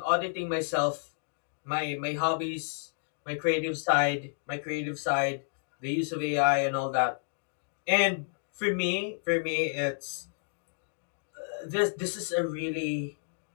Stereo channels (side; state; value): right; silent; digital silence